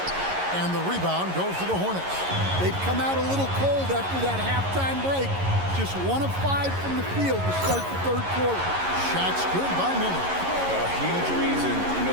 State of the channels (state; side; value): late; left; 11 ms